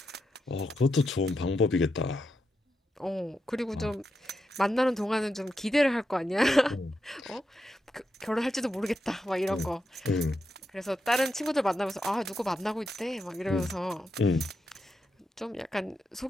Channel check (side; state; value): both; normal; correlation 0.85